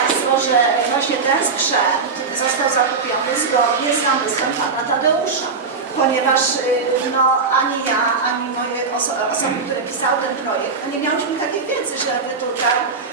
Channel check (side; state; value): left; quieter; 4.7 dB